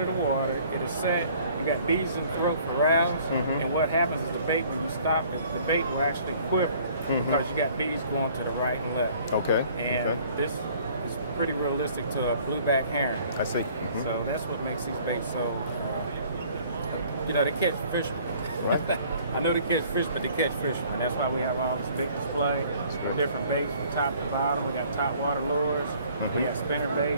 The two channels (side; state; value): both; inverted; correlation -0.56